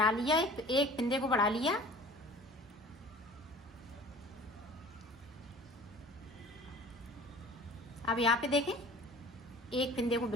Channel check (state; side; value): normal; both; correlation 0.45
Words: लिया, एक फंदे को बढ़ा लिया। अब यहाँ पे देखें, 1 फंदे को